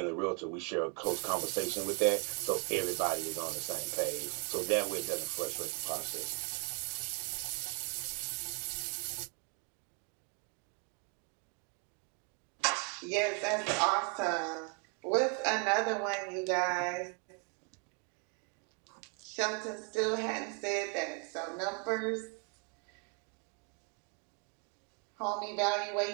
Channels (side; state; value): left; quieter; 37.2 dB